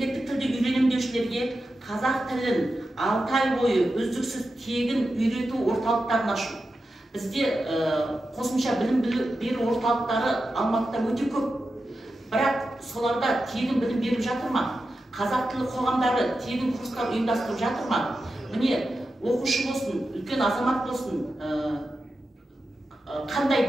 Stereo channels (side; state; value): both; normal; correlation 0.91